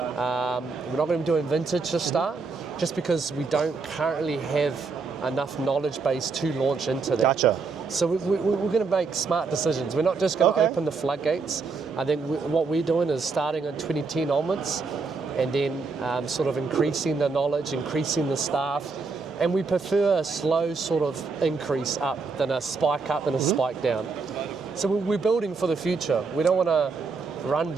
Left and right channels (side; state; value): left; quieter; 4.5 dB